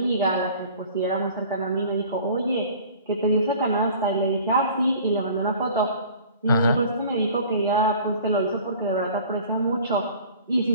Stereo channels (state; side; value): inverted; both; correlation -0.46